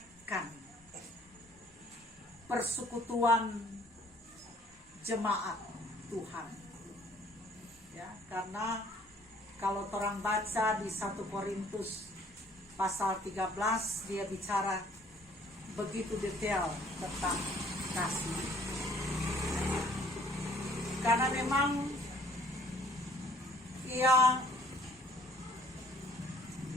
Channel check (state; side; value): normal; both; correlation 0.59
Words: persekutuan jemaat Tuhan. Ya, karena kalau orang baca di 1 Korintus pasal 13, dia bicara begitu detail tentang kasih. Karena memang ia